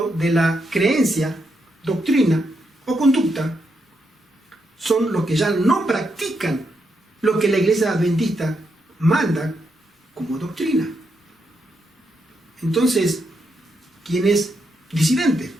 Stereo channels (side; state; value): both; normal; correlation 0.81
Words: de la creencia, doctrina o conducta son los que ya no practican lo que la iglesia adventista manda como doctrina. Entonces, ¿quién es disidente?